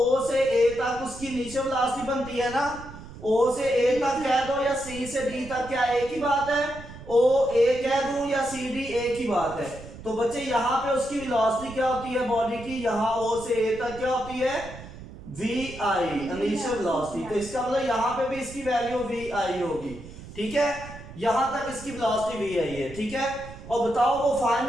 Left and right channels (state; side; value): noise; right; rumble, 15 dB below the sound